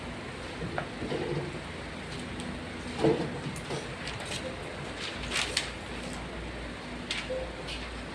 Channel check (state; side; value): identical; both; correlation 1.00